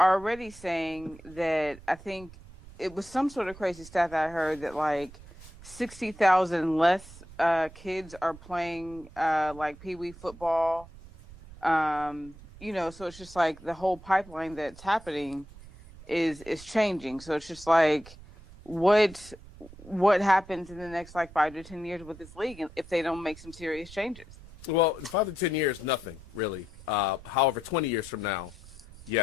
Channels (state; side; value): noise; right; rumble, 19 dB below the sound